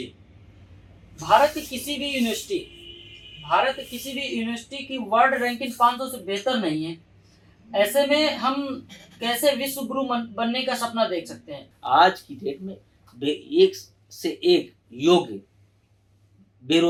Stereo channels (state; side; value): identical; both; correlation 1.00